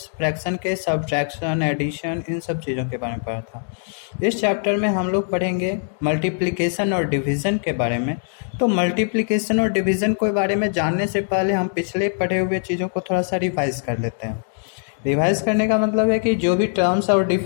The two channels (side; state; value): right; silent; digital silence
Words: फ्रैक्शन के सब्ट्रैक्शन, एडिशन, इन सब चीज़ों के बारे में पढ़ा था। इस चैप्टर में हम लोग पढ़ेंगे मल्टीप्लिकेशन और डिवीज़न के बारे में। तो मल्टीप्लिकेशन और डिवीज़न के बारे में जानने से पहले हम पिछले पढ़े हुए चीज़ों को थोड़ा सा रिवाइज कर लेते हैं। रिवाइज करने का मतलब है कि जो भी टर्म्स और